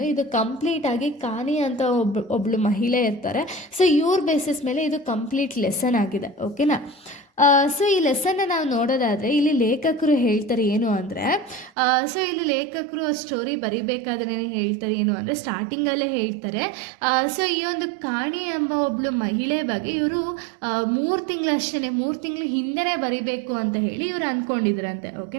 ಇದು ಕಂಪ್ಲೀಟಾಗಿ ಕಾನಿ ಅಂತ ಒಬ್ಳು ಮಹಿಳೆ ಇರ್ತಾರೆ. ಸೊ ಇವ್ರ ಬೇಸಿಸ್ ಮೇಲೆ ಇದು ಕಂಪ್ಲೀಟ್ ಲೆಸನ್ ಆಗಿದೆ. ಓಕೆನಾ? ಸೊ ಈ ಲೆಸನ್ನ ನಾವು ನೋಡೋದಾದರೆ ಇಲ್ಲಿ ಲೇಖಕರು ಹೇಳ್ತಾರೆ ಏನು ಅಂದರೆ, ಸೊ ಇಲ್ಲಿ ಲೇಖಕರು ಸ್ಟೋರಿ ಬರಿಬೇಕಾದ್ರೆ ಹೇಳ್ತಾರೆ ಏನು ಅಂದರೆ, ಸ್ಟಾರ್ಟಿಂಗಲ್ಲೇ ಹೇಳ್ತಾರೆ. ಸೊ ಈ ಒಂದು ಕಾಣಿ ಎಂಬ ಒಬ್ಳು ಮಹಿಳೆ ಬಗ್ಗೆ ಇವರು 3 ತಿಂಗಳು ಹಿಂದೆನೇ ಬರಿಬೇಕು ಅಂತ ಹೇಳಿ ಇವರು ಅಂದ್ಕೊಂಡಿದ್ರಂತೆ.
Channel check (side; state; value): left; drops out; at 11.7 s